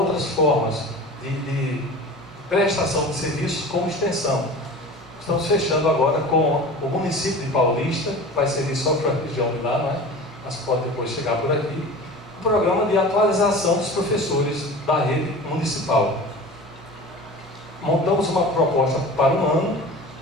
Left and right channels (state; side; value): normal; both; correlation 0.37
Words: formas de prestação de serviços como extensão. Estamos fechando agora com o município de Paulista, que vai servir só para a região de lá, não é? Mas pode depois chegar por aqui. Um programa de atualização dos professores da rede municipal. Montamos uma proposta para um ano,